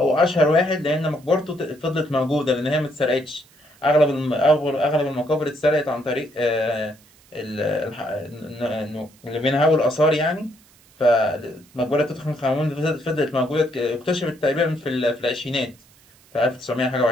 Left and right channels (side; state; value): right; noise; hiss, 29 dB below the sound